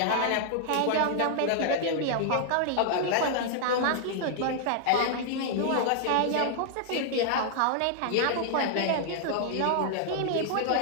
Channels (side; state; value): both; different; correlation -0.01